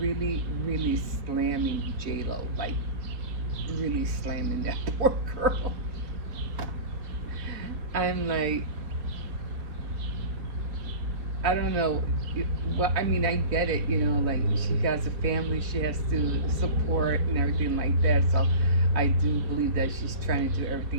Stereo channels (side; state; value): left; late; 3.2 ms